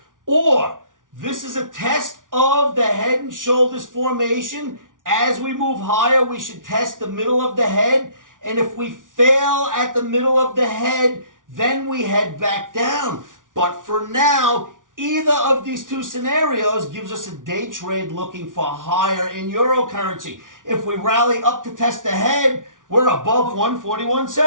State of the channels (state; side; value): late; left; 0.88 ms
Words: or this is a test of the head and shoulders formation. As we move higher, we should test the middle of the head, and if we fail at the middle of the head, then we head back down. But for now, either of these two scenarios gives us a day trade looking for higher in euro currency. If we rally up to test the head, we're above